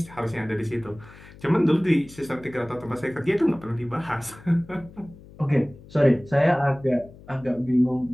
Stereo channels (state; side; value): noise; left; hum, 20 dB below the sound